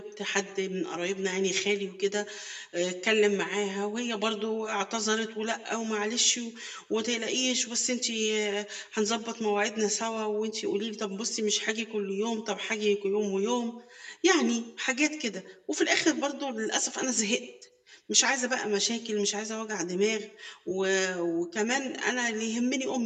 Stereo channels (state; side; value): identical; both; correlation 1.00